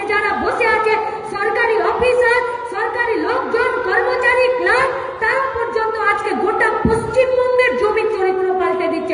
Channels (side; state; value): both; identical; correlation 1.00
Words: যারা বসে আছে, সরকারি অফিসার, সরকারি লোকজন, কর্মচারী, ক্লার্ক, তারা পর্যন্ত আজকে গোটা পশ্চিমবঙ্গের জমি চরিত্র পাল্টে